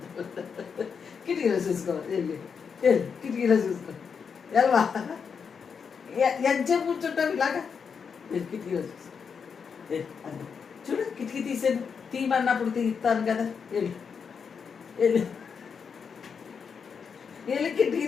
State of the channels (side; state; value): right; quieter; 6.2 dB